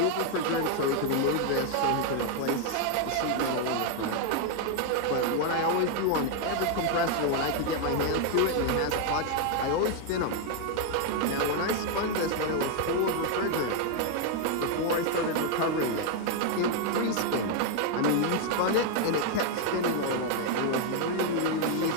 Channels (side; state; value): both; different; correlation 0.00